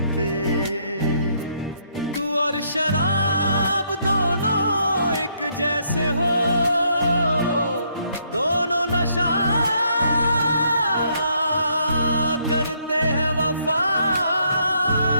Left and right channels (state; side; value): inverted; both; correlation -0.71